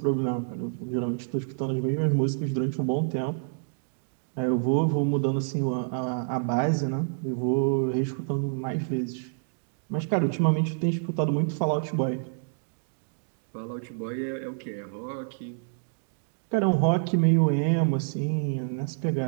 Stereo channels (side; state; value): left; silent; digital silence